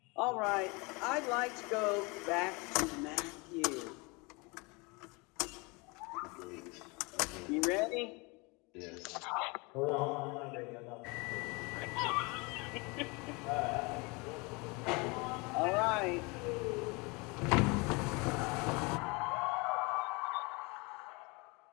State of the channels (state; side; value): quieter; right; 27.9 dB